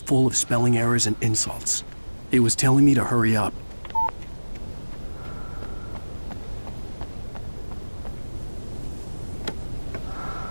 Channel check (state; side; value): inverted; both; correlation -1.00